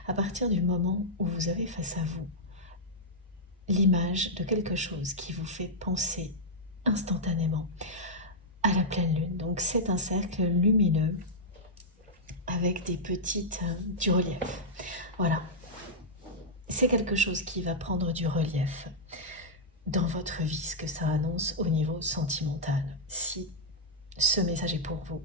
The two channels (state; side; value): normal; both; correlation -0.07